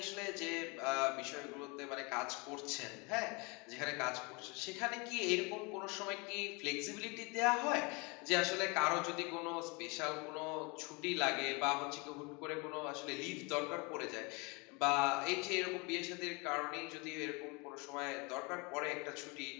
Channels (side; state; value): right; quieter; 29.0 dB